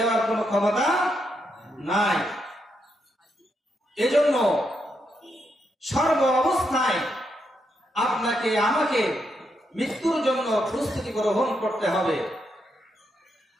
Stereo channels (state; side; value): normal; both; correlation 0.81